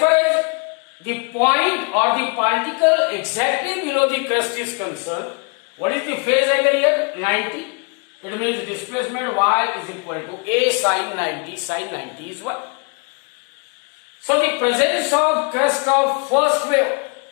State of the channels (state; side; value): quieter; right; 36.2 dB